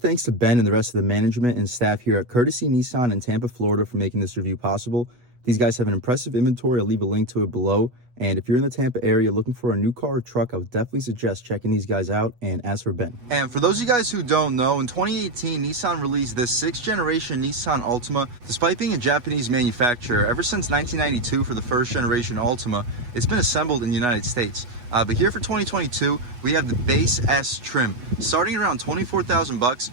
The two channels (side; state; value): left; late; 8.2 ms